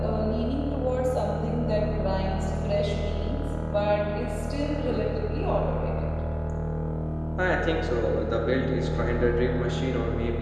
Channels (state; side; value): identical; both; correlation 1.00